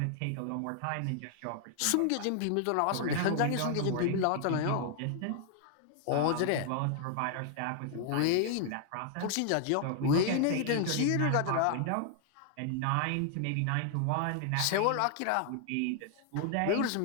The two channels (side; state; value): both; different; correlation 0.00